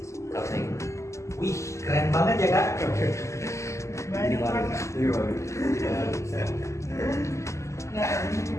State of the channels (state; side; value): late; right; 0.14 ms